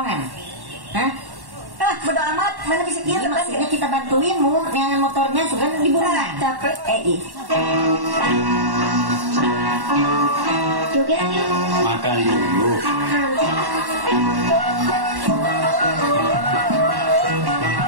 Hah? Bodo amat, mana bisa kita maksudnya kita bantuin mu dengan motornya suka dibunuh. Capek, Joget yuk. Makan dulu.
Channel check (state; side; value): late; left; 1.1 ms